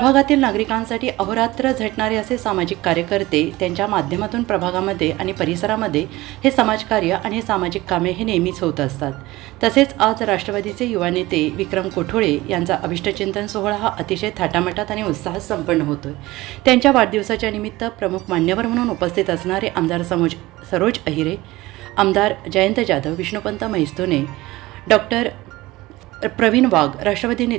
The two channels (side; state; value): left; quieter; 18.9 dB